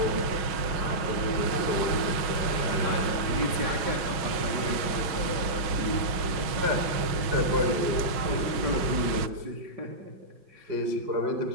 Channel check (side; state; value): left; late; 6.1 ms